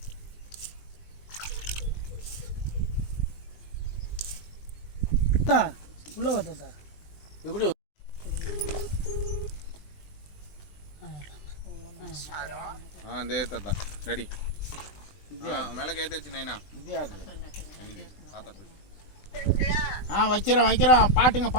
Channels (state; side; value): late; right; 20 ms